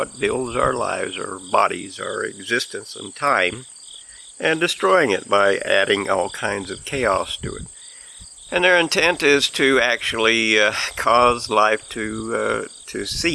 builds our lives, our bodies, our existence and time, and destroying it by adding all kinds of chaos to it. And their intent is to actually cause life to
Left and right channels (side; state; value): both; identical; correlation 1.00